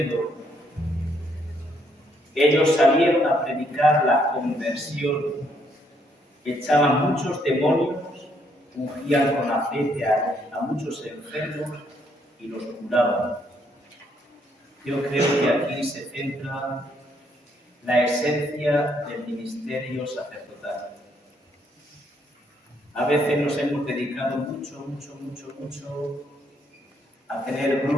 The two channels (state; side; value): normal; both; correlation 0.71